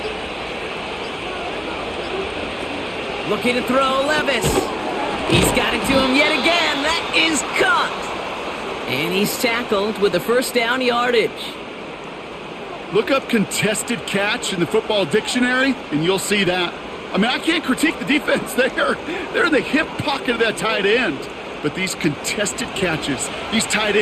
Looking to throw, Levis. He's got it to him yet again. That is caught. And he's tackled with the first down yardage. Look up contested catch in the football dictionary, and you'll see that. I mean, I can't critique the defense there. They're in the hip pocket of that tight end. But these contested catches, these tight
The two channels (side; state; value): both; identical; correlation 1.00